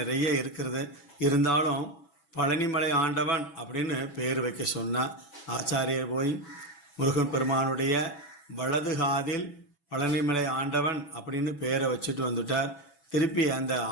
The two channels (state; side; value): late; right; 6.1 ms